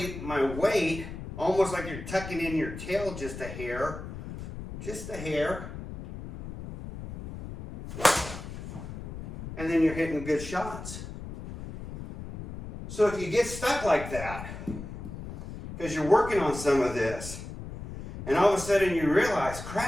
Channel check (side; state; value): left; noise; rumble, 10 dB below the sound